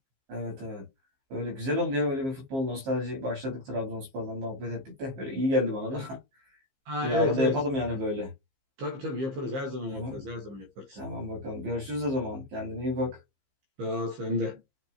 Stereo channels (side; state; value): left; late; 15 ms